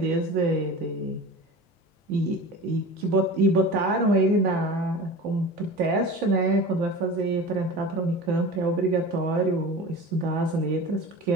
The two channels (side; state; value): both; normal; correlation 0.35